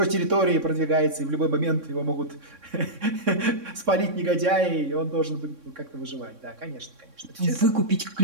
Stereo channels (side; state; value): left; late; 3.6 ms